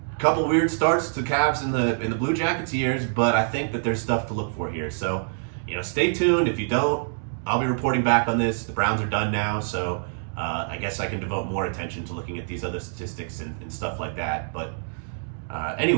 a couple weird starts to Cavs in the Blue Jackets years, but I think that there's stuff to look for here. So, stay tuned. If you don't, I'll be reporting back on this. The Browns are done now, so I guess I can devote more attention to looking at these other statistics and stuff like that. But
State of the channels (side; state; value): left; silent; digital silence